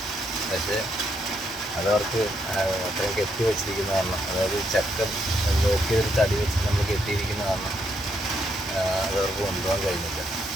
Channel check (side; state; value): both; normal; correlation 0.76